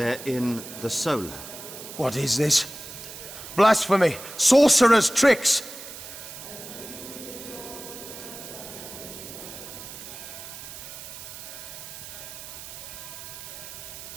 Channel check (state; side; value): noise; right; hiss, 12 dB below the sound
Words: in the Solar. What is this? Blasphemy! Sorcerer's tricks!